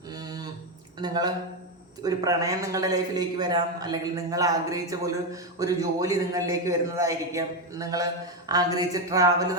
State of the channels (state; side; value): normal; both; correlation 0.08